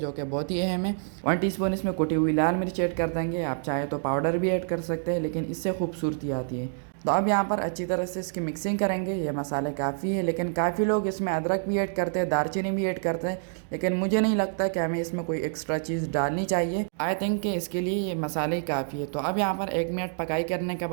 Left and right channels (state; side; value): silent; left; digital silence